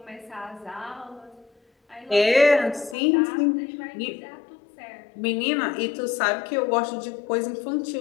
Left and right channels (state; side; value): drops out; right; at 3.0 s